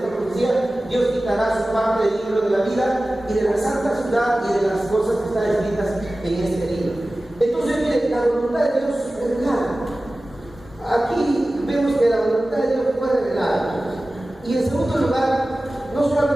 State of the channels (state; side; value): normal; both; correlation 0.96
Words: profecía, Dios quitará su parte del libro de la vida y de la santa ciudad y de las cosas que están escritas en este libro. Entonces, miren, la voluntad de Dios es revelada. Aquí vemos que la voluntad de Dios fue revelada. Y en segundo lugar, no